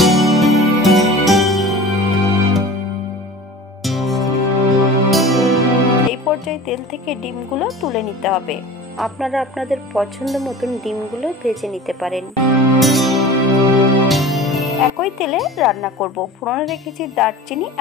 এই পর্যায়ে তেল থেকে ডিমগুলো তুলে নিতে হবে। আপনারা আপনাদের পছন্দ মতন ডিমগুলো ভেজে নিতে পারেন। একই তেলে রান্না করব। ফোড়নে রেখেছি দারচিনি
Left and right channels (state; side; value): normal; both; correlation 0.38